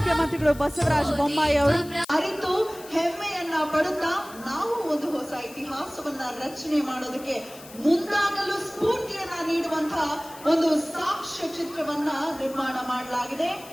ಬಸವರಾಜ ಬೊಮ್ಮಾಯಿ ಅವರು ಅರಿತು ಹೆಮ್ಮೆಯನ್ನ ಪಡುತ್ತಾ ನಾವು ಒಂದು ಹೊಸ ಇತಿಹಾಸವನ್ನ ರಚನೆ ಮಾಡೋದಕ್ಕೆ ಮುಂದಾಗಲು ಸ್ಫೂರ್ತಿಯನ್ನ ನೀಡುವಂತಹ ಒಂದು ಸಾಕ್ಷ್ಯ ಚಿತ್ರವನ್ನ ನಿರ್ಮಾಣ ಮಾಡಲಾಗಿದೆ.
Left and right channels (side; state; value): left; noise; hiss, 18 dB below the sound